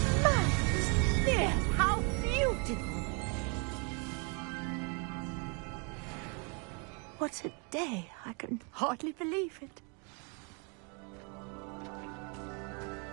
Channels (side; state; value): left; quieter; 35.3 dB